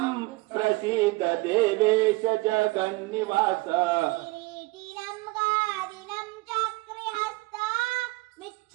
प्रसीद देवेश जगन्निवास किरीटिनं गादिनं चक्रिहस्ता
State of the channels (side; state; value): left; quieter; 23.3 dB